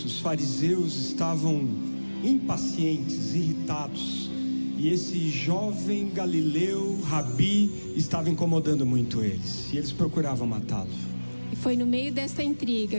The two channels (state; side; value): inverted; both; correlation -1.00